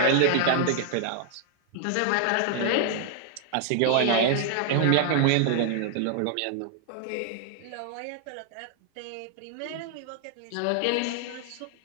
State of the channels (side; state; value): both; different; correlation 0.00